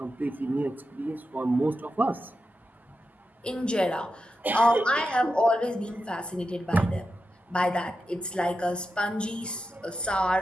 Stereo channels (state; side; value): normal; both; correlation 0.89